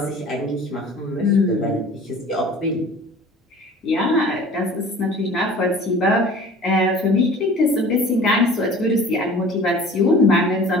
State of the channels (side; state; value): both; normal; correlation 0.45